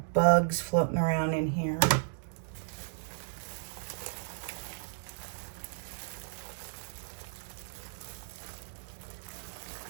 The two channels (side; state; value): left; silent; digital silence